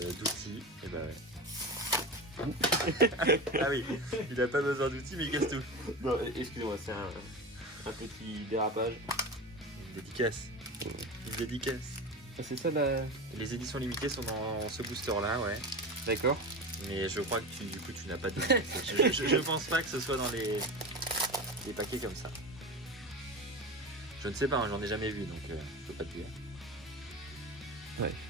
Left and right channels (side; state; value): both; normal; correlation 0.26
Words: Et bah ouais. Ah oui, il a pas besoin d'outils, mais il casse tout. Non, excusez-moi, c'est un petit dérapage. Une dédicace. Une dédicace. Ah, c'est ça la... Les éditions limitées sont dans ce booster là, ouais. D'accord. Mais je crois que du coup tu n'as pas de... je pense pas que ce soit dans les paquets comme ça. Je ne sais pas, hein, j'en ai jamais vu, donc je peux pas te dire. Ouais,